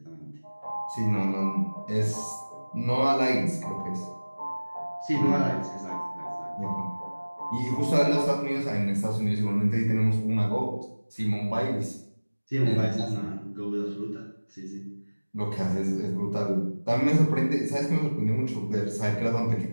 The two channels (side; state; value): both; inverted; correlation -1.00